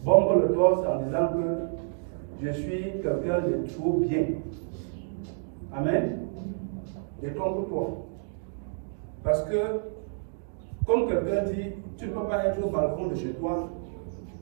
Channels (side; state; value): left; silent; digital silence